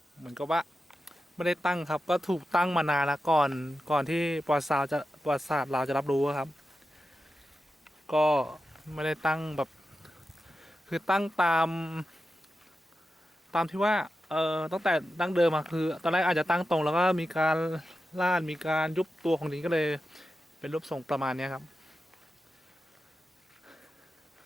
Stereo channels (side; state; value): both; normal; correlation 0.91